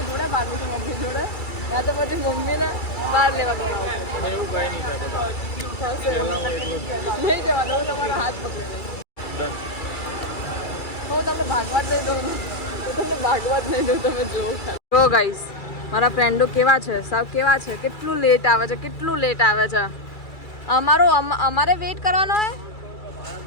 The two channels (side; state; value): right; late; 2.3 ms